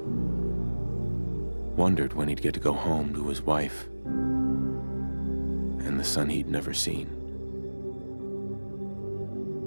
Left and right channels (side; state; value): both; inverted; correlation -1.00